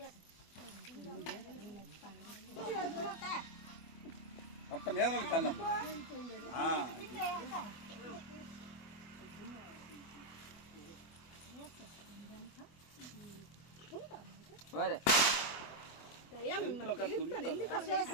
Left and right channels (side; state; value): right; late; 24 ms